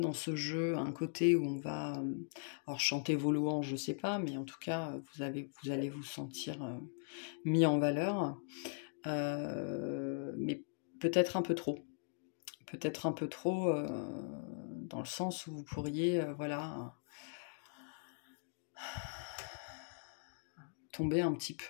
ce jeu un côté où on va alors chanter vos louanges, je ne sais pas, mais en tout cas, vous allez vous sentir mis en valeur, mais peut-être un peu trop. Peut-être un peu trop dans le sens où vous pourriez voilà, tomber un petit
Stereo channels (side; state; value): right; silent; digital silence